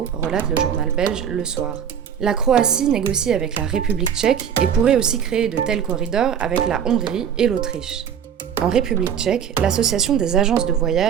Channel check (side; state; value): left; quieter; 8.3 dB